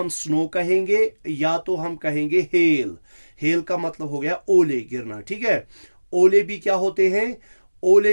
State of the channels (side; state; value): both; inverted; correlation -1.00